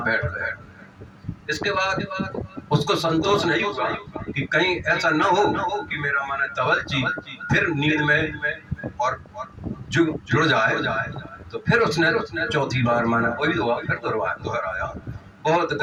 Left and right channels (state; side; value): identical; both; correlation 1.00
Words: बैठ गए। इसके बाद उसको संतोष नहीं हुआ कि कहीं ऐसा ना हो कि मेरा माने तवलजी फिर नींद में और जुड़ जाए। तो फिर उसने चौथी बार माना वही दुआ फिर दोहराया, बहुत